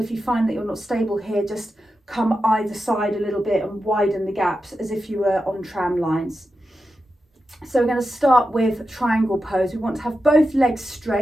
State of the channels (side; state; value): both; normal; correlation 0.90